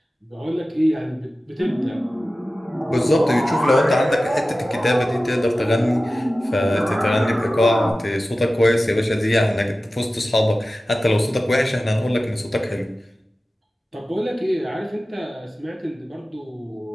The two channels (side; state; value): both; normal; correlation 0.95